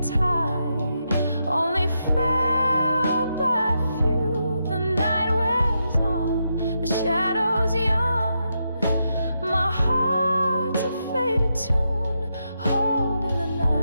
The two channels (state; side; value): inverted; both; correlation -0.83